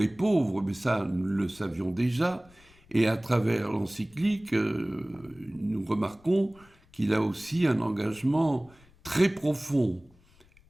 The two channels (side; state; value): left; noise; rumble, 28 dB below the sound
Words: pauvres, mais ça, nous le savions déjà. Et à travers l'encyclique, nous remarquons qu'il a aussi un engagement très profond